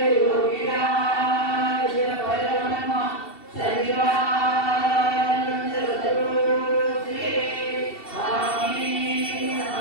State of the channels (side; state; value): right; late; 2.7 ms